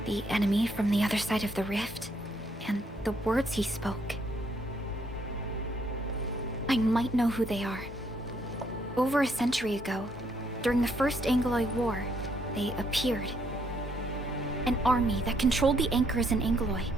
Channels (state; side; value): normal; both; correlation 0.71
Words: The enemy from the other side of the rift, and the words he spoke. I might know who they are. Over a century ago, during the First Angloid War, they appeared. An army that controlled the anchors in Angloy,